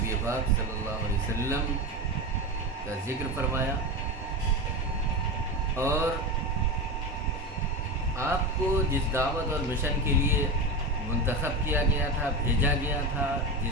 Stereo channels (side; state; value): both; normal; correlation 0.22